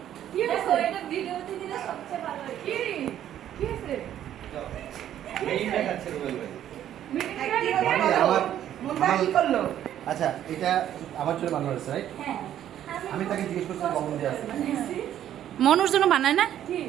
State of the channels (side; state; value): left; quieter; 11.1 dB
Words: কি হয়েছে এটা ভিডিওতে দিলে সবচেয়ে ভালো হয় কি কি হয়েছে এই দেখাচ্ছে রুবেল ভাই। আমার মুন্ডা কি করলো? আচ্ছা এটা আমার চুলে বানানো হয়েছে রাইট? হ্যাঁ আমি তাকে জিজ্ঞেস করছি কখন দিয়ে আছে মনুর জন্য বানায় না?